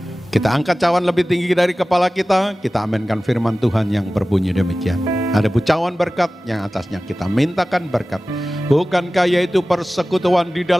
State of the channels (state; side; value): normal; both; correlation 0.97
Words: Kita angkat cawan lebih tinggi dari kepala kita aminkan firman Tuhan yang berbunyi demikian. Ada bucawan berkat yang atasnya kita mintakan berkat. Bukankah yaitu persekutuan di